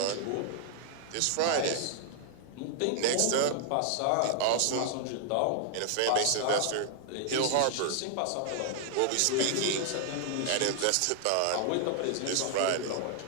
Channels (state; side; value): different; both; correlation 0.00